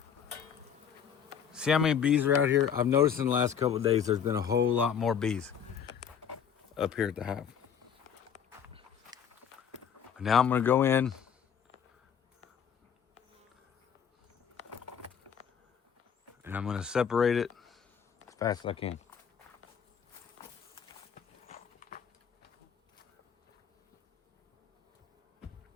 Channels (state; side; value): quieter; right; 7.8 dB